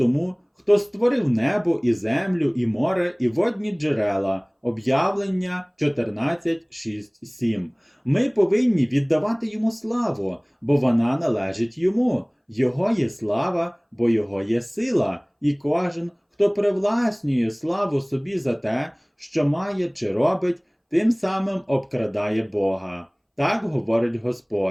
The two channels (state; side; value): identical; both; correlation 1.00